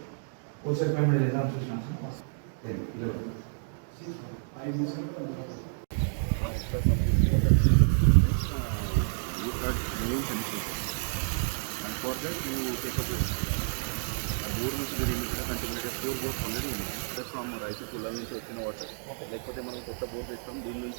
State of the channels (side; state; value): left; silent; digital silence